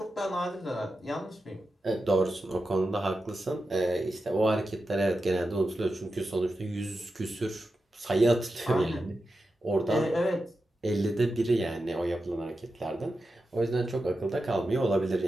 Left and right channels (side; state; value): both; normal; correlation 0.90